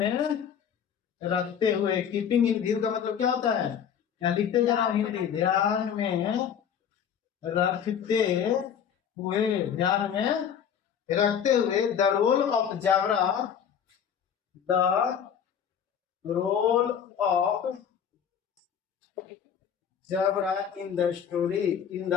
रखते हुए, कीपिंग इन व्यू का मतलब क्या होता है, यहाँ लिखते जाना हिंदी, ध्यान में रखते हुए, ध्यान में रखते हुए, the role of Jabra, the role of Jabra in the story, in the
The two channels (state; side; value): quieter; right; 8.2 dB